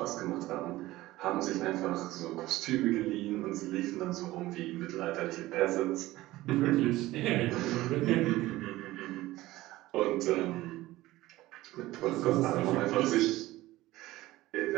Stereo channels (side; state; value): left; quieter; 17.4 dB